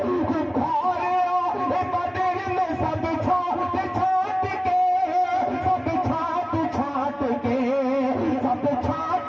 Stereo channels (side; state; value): both; identical; correlation 1.00